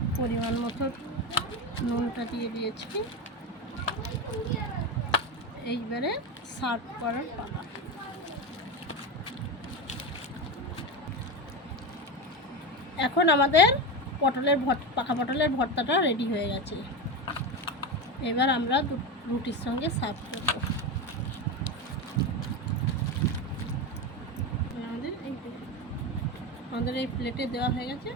পরিমাণ মতো নুনটা দিয়ে দিয়েছি। এইবারে সার্ভ করার পালা। এখন আমাদের পাকা পটলের ভর্তাটা রেডি হয়ে গেছে। এবার আমরা রুটির সঙ্গে সার্ভ করব। আমাদের এই প্লেটে দেওয়া হয়ে গেছে।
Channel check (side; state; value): both; normal; correlation 0.18